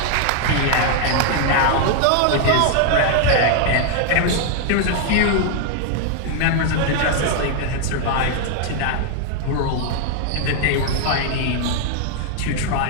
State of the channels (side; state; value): both; different; correlation 0.00